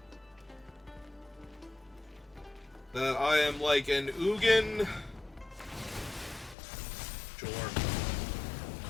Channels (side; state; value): right; drops out; at 6.6 s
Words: that I am like an Ugin. Sure.